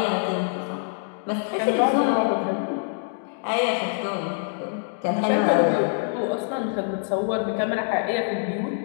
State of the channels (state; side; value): silent; right; 62 dB below the other